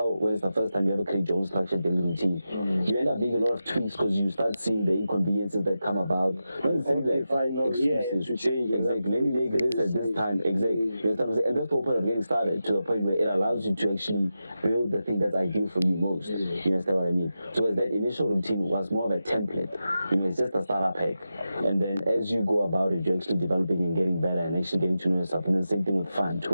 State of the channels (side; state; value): both; inverted; correlation -0.90